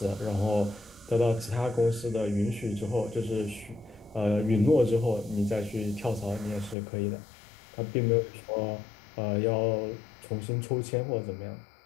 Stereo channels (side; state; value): right; drops out; at 6.8 s